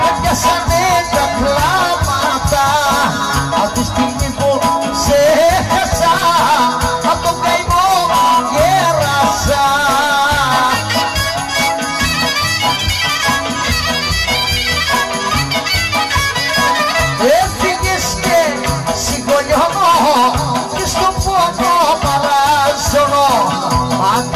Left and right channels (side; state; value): both; identical; correlation 1.00